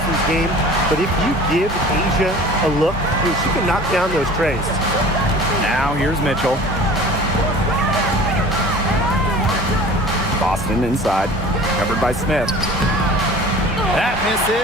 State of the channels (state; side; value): normal; both; correlation 0.43